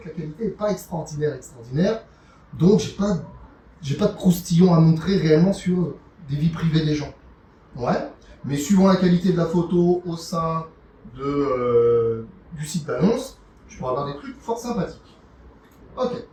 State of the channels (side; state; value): both; identical; correlation 1.00